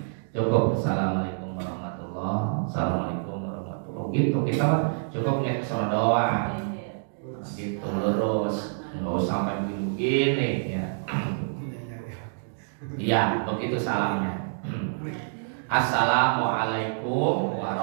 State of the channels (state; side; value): silent; left; digital silence